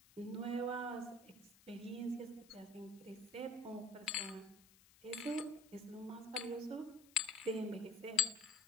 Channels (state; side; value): noise; left; hiss, 24 dB below the sound